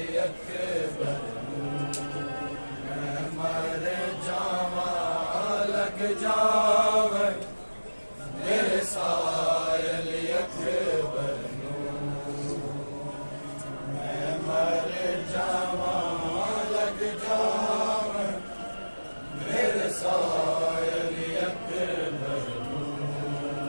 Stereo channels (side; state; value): both; inverted; correlation -1.00